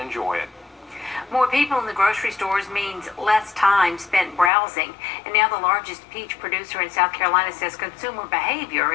it. More people in the grocery stores means less time spent browsing. And now the largest peach producer in South Carolina says consumer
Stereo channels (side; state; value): right; drops out; at 4.5 s